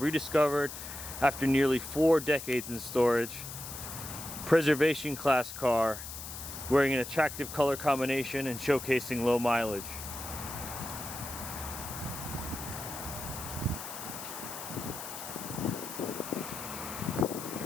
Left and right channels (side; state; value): left; noise; hiss, 9 dB below the sound